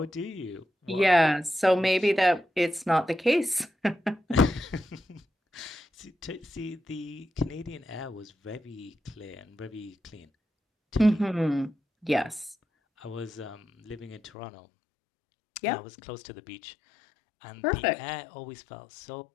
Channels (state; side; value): drops out; right; at 14.3 s